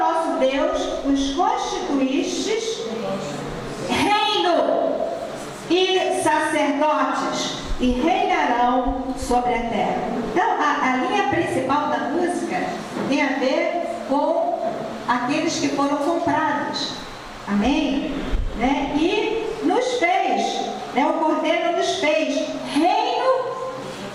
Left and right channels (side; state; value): both; identical; correlation 1.00